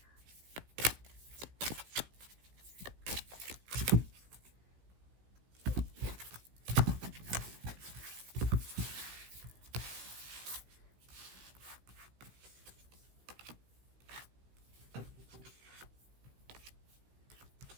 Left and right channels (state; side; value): late; left; 16 ms